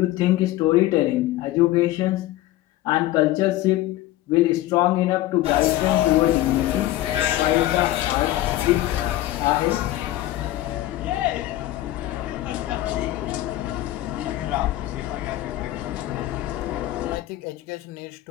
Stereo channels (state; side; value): quieter; right; 15.3 dB